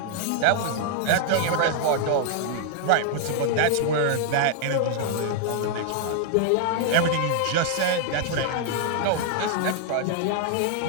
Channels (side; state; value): both; different; correlation 0.00